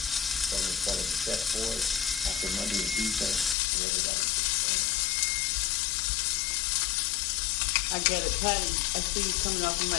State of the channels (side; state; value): right; drops out; at 3.6 s